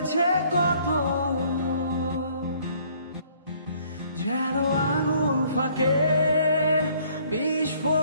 কত, যেন আঙুল ফাঁকে বিষ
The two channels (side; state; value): both; inverted; correlation -0.61